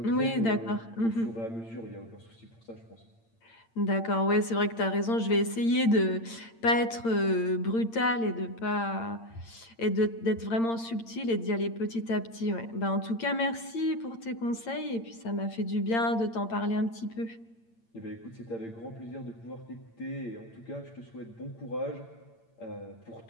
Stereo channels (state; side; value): late; right; 8.8 ms